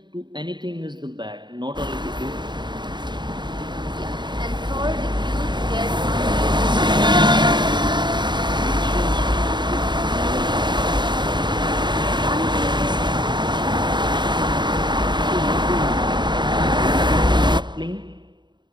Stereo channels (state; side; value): late; left; 0.22 ms